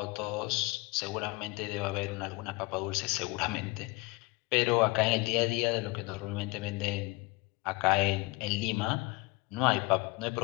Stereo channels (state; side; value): quieter; right; 24.1 dB